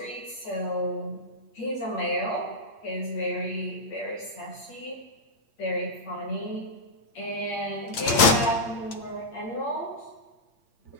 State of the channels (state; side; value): late; right; 8.6 ms